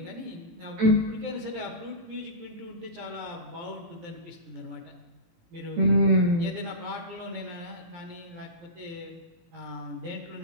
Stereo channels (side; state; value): left; late; 17 ms